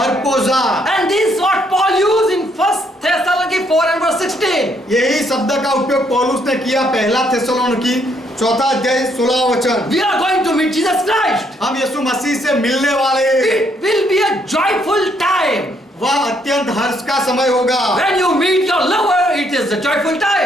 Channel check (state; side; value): normal; both; correlation 0.71